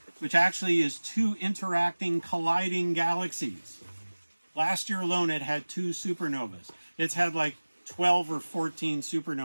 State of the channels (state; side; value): inverted; both; correlation -1.00